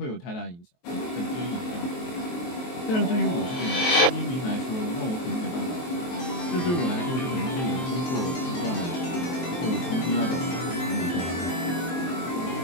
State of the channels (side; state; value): right; late; 23 ms